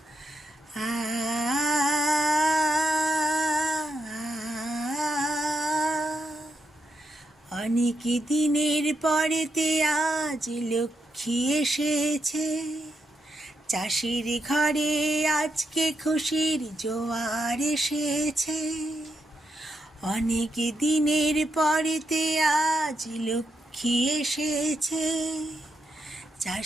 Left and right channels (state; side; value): normal; both; correlation 0.82